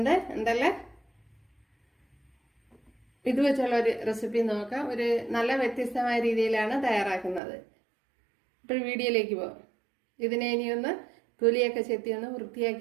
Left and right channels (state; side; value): drops out; left; at 7.4 s